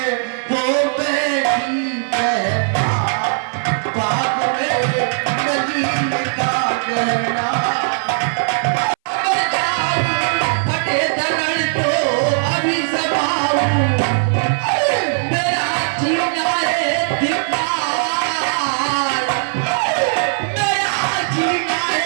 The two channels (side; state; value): left; silent; 62 dB below the other